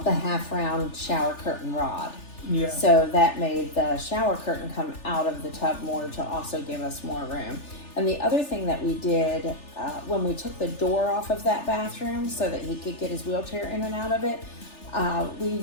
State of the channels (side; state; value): right; late; 3.4 ms